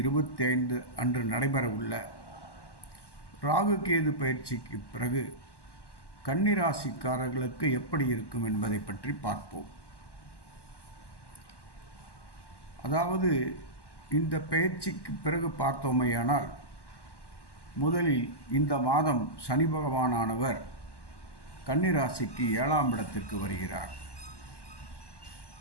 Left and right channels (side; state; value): right; late; 1.1 ms